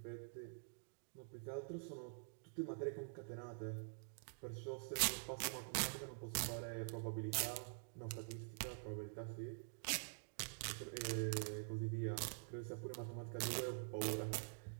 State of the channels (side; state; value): left; silent; digital silence